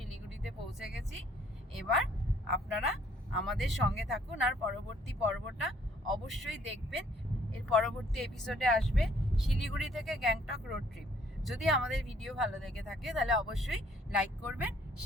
পৌঁছে গেছি। এবার আপনারা আমাদের সঙ্গে থাকুন, আর পরবর্তী পর্বটা অবশ্যই দেখবেন। এর পরবর্তী এপিসোডে আসবে শিলিগুড়ি থেকে গ্যাংটক রোড ট্রিপ। যদি আমাদের ভিডিও ভালো লেগে থাকে তাহলে অবশ্যই লাইক করবেন,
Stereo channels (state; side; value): normal; both; correlation 0.63